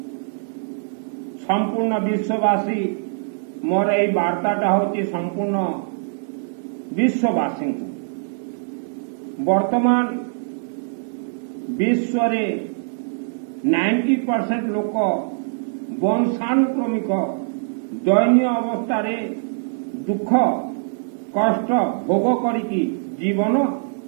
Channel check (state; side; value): silent; left; digital silence